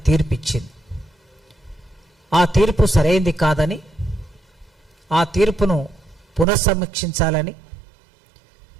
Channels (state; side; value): drops out; left; at 6.5 s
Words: తీర్పిచ్చింది. ఆ తీర్పు సరైంది కాదని, ఆ తీర్పును పునఃసమీక్షించాలని